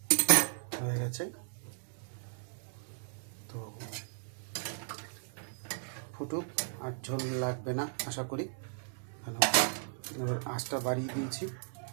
হয়ে গেছে। তো ফুটুক, আর ঝোল লাগবে না আশা করি, কেন এবার আঁচটা বাড়িয়ে দিয়েছি।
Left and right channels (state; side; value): silent; left; 54 dB below the other